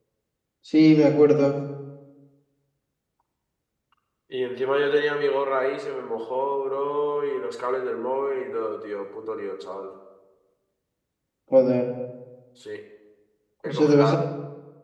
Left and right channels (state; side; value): identical; both; correlation 1.00